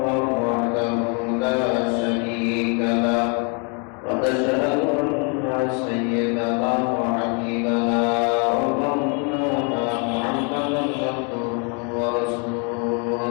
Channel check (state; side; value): quieter; right; 36.3 dB